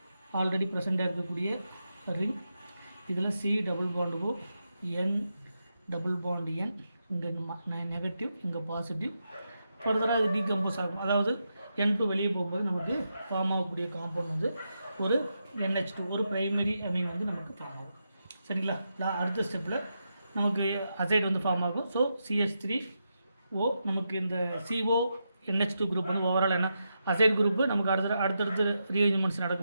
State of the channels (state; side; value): inverted; both; correlation -0.86